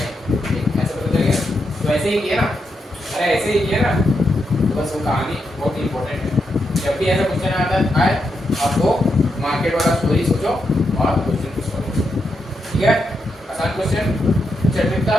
ऐसे पता चल गया। तो ऐसे ही किया ना, अरे ऐसे ही किया ना, तो बस वो कहानी बहुत इंपॉर्टेंट है। जब भी ऐसा क्वेश्चन आता है आपको मार्केट वाला स्टोरी सोचो और क्वेश्चन को सॉल्व करो, ठीक है। आसान क्वेश्चन, चैप्टर का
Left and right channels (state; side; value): normal; both; correlation 0.83